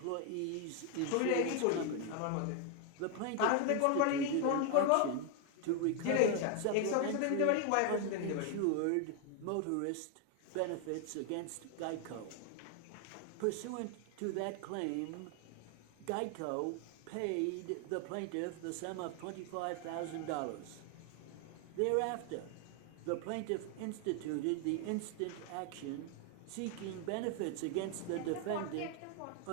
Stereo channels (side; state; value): both; different; correlation 0.01